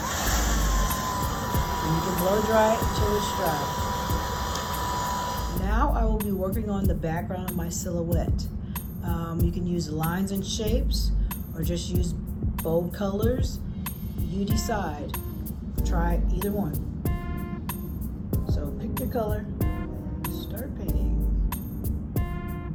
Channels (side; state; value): both; identical; correlation 1.00